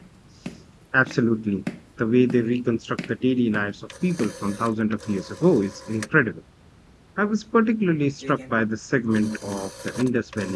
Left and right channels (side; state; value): both; identical; correlation 1.00